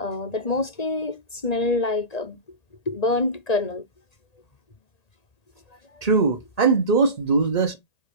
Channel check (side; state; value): right; late; 1.8 ms